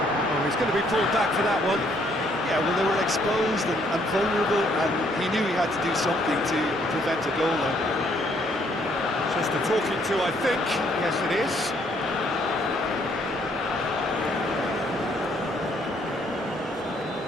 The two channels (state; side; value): normal; both; correlation 0.67